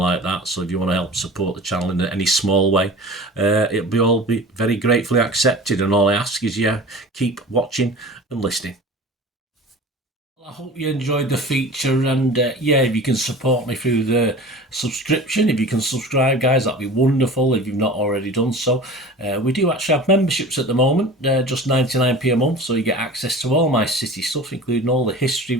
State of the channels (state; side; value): normal; both; correlation 0.38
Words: that. So if you want to help support the channel in any small way, it'll be very gratefully accepted. And all I ask is, keep watching and listening. I hope you enjoyed the feature, and if you can support me through the subscription, if you can subscribe, guys, that'd be wonderful if you've not already done so. We do actually have memberships at the moment, just 99p a month, so you get access to all my City stuff, including all the history